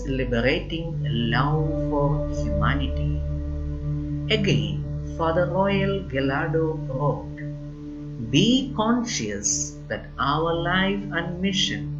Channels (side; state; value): both; identical; correlation 1.00